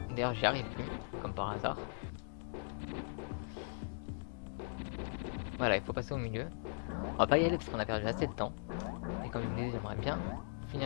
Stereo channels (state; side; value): silent; right; digital silence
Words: D'ailleurs j'y arrive, comme par hasard. Voilà, il faut passer au milieu. On va pas y aller parce qu'on a perdu assez de temps. Et comme je vous disais, j'aimerais bien